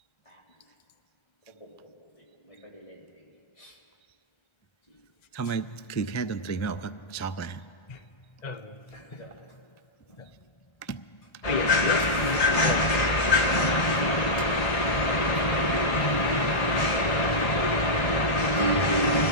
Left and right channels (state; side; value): late; right; 1.3 ms